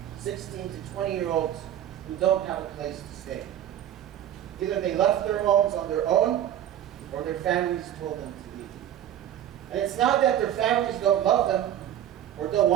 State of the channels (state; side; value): quieter; left; 11.0 dB